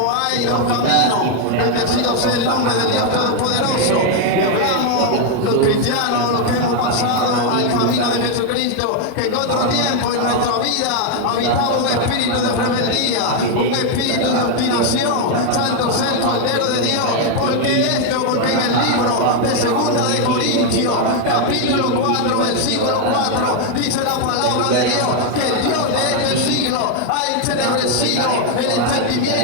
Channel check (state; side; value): different; both; correlation 0.01